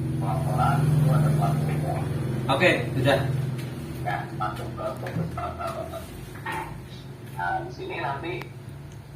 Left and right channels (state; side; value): identical; both; correlation 1.00